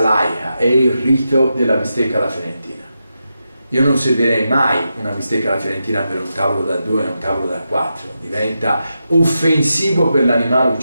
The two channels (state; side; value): inverted; both; correlation -0.88